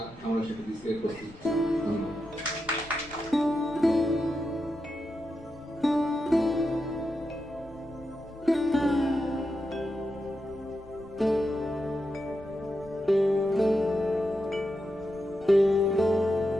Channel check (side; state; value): left; noise; rumble, 22 dB below the sound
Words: আমরা সেটা দিতে প্রস্তুত। ধন্যবাদ।